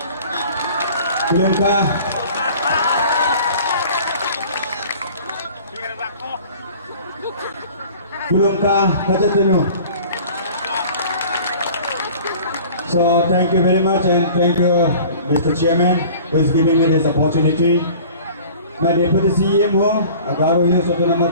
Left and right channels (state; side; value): inverted; both; correlation -0.45